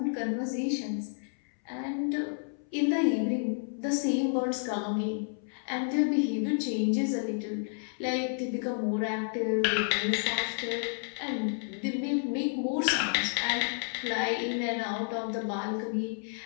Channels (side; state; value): right; silent; 57 dB below the other